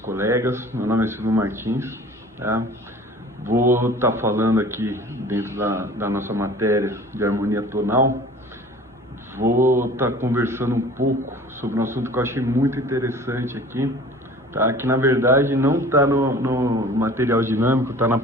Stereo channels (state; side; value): normal; both; correlation 0.45